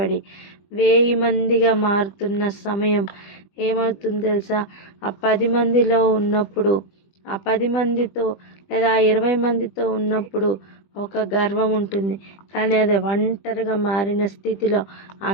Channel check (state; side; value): late; right; 20 ms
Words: 1000 మందిగా మారుతున్న సమయం ఏమవుతుంది తెలుసా? ఆ 10 మందిలో ఉన్నప్పుడు, ఆ 10 మందితో లేదా 20 మందితో ఉన్నప్పుడు ఒక గర్వం ఉంటుంది, కానీ అది ఒంటరిగా మారిన స్థితిలో ఆ